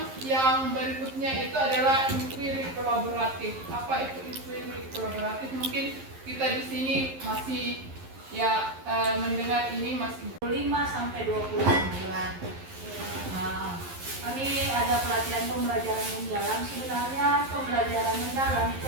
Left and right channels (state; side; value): late; left; 11 ms